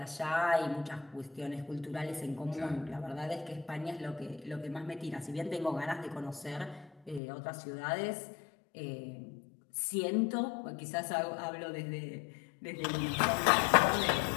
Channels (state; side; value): drops out; right; at 7.2 s